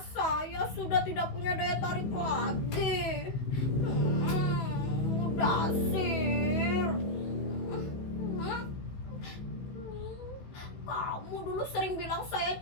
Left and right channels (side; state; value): right; late; 15 ms